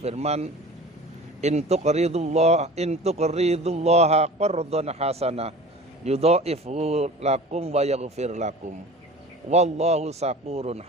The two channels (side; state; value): both; normal; correlation 0.39